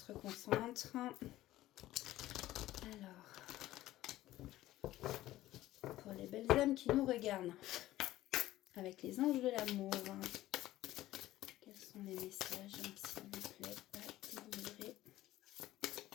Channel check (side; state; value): right; quieter; 15.4 dB